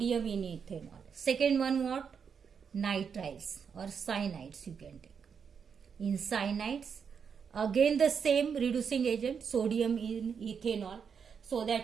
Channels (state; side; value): quieter; left; 6.6 dB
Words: in ethanol. Second one what? Nitriles or cyanides you can take. In cyanides, again the same reducing agent, sodium in ethanol, so